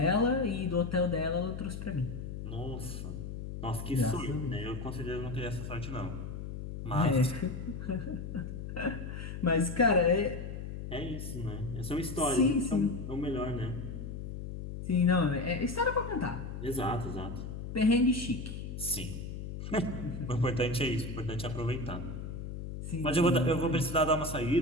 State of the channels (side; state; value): left; noise; hum, 7 dB below the sound